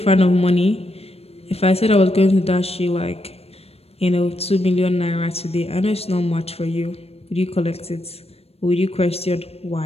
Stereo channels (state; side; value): late; right; 0.29 ms